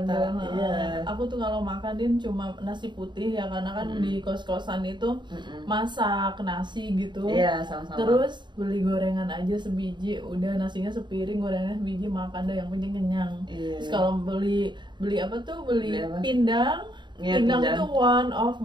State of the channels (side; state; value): left; late; 0.22 ms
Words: Iya. Aku tuh kalau makanin cuma nasi putih ya, karena kan di kos-kosan itu masak nasi gitu. Iya, sama-sama. Terus beli gorengan aja sebiji, udah nasinya sepiring, gorengannya sebiji, makan deh yang penting kenyang. Iya. Terus kalau beli apa tuh, beli Beli apa? pindang. Iya, Pindang pindang. itu one of